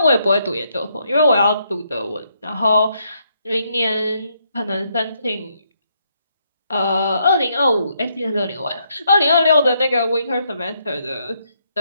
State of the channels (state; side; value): inverted; both; correlation -0.75